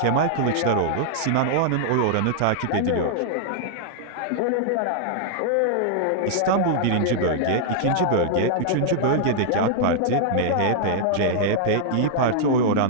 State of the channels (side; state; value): both; different; correlation -0.01